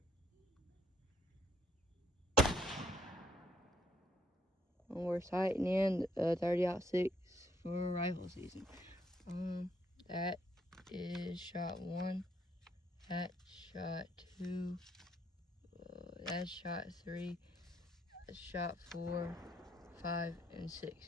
We're sighting in 30-06 for rifle season. That is shot 1. That's shot 2. That's shot 3. That's shot 4, 5, and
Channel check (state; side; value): normal; both; correlation 0.71